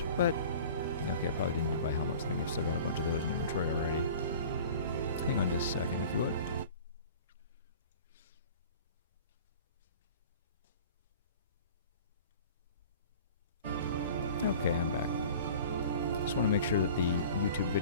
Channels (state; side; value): inverted; both; correlation -0.43